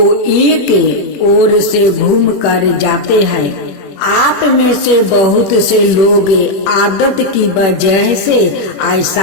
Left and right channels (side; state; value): right; late; 21 ms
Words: एक ओर से घूम कर जाते हैं। आप में से बहुत से लोग आदत की वजह से